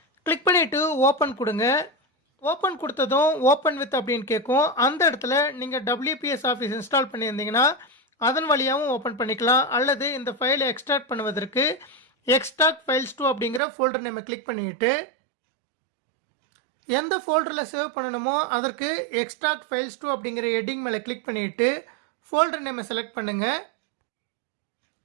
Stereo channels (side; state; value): left; drops out; at 13.6 s